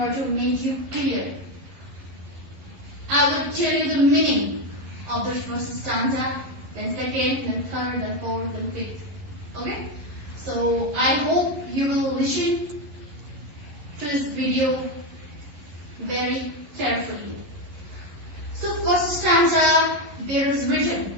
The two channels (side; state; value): left; late; 11 ms